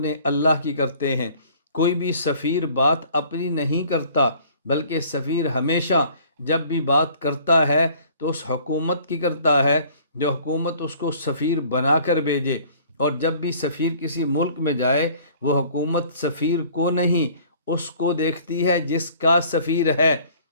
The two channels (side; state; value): both; inverted; correlation -0.53